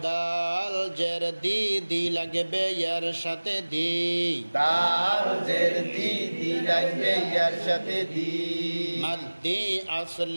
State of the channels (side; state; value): both; inverted; correlation -1.00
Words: দাল জের দি দি লাগবে ইয়ার সাথে দি দাল জের দি দি লাগবে ইয়ার সাথে দি মাদ্দি